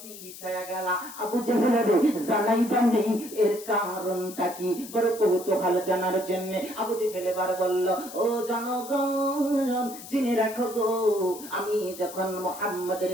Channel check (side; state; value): left; noise; hiss, 14 dB below the sound